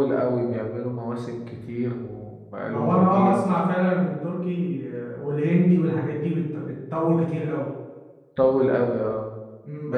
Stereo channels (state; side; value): identical; both; correlation 1.00